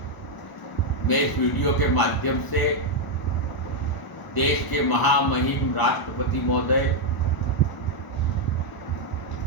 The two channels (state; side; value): late; right; 1.0 ms